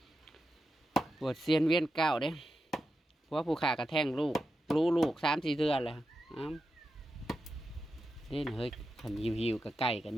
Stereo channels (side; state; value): both; normal; correlation 0.89